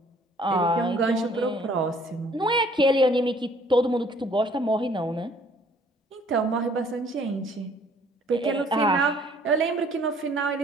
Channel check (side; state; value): both; normal; correlation 0.58